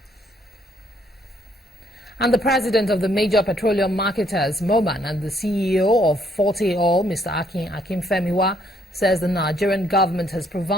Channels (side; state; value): both; normal; correlation 0.68